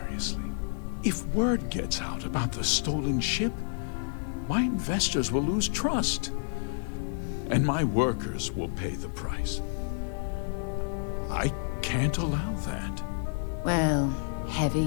If word gets out about the stolen ship, my investors will lose trust, and my workers will pay the price. I can't allow that. Well,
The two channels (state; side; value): silent; right; digital silence